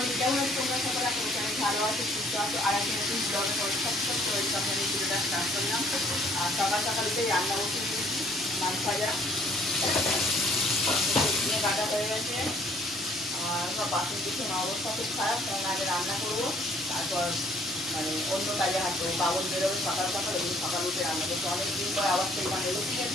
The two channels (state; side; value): normal; both; correlation 0.61